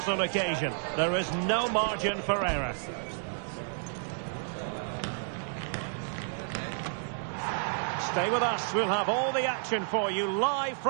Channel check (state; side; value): silent; left; 57 dB below the other